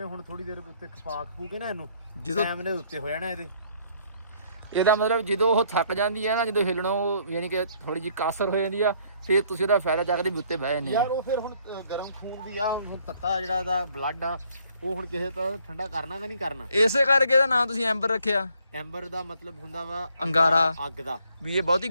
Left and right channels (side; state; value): both; inverted; correlation -0.65